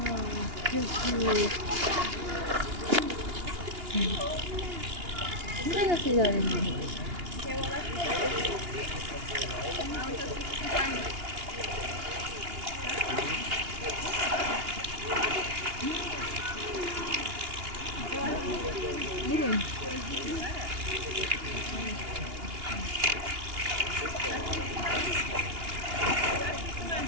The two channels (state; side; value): late; left; 2.8 ms